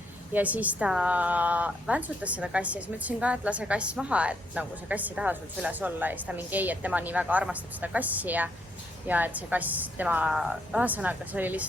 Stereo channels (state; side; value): normal; both; correlation 0.74